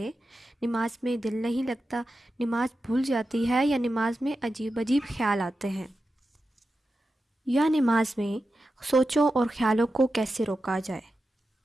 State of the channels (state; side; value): normal; both; correlation 0.91